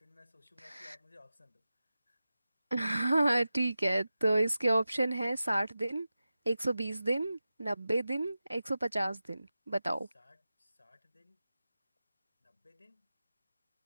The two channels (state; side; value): inverted; both; correlation -0.94